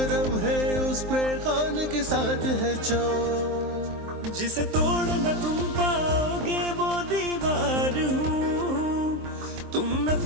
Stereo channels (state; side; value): late; left; 23 ms